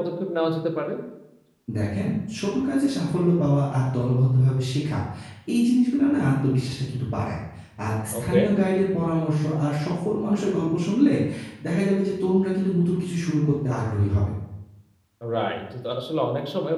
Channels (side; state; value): both; identical; correlation 1.00